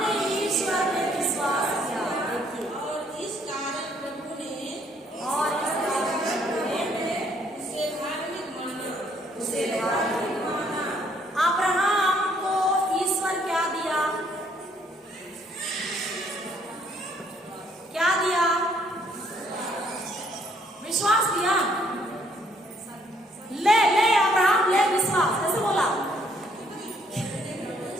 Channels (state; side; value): normal; both; correlation 0.66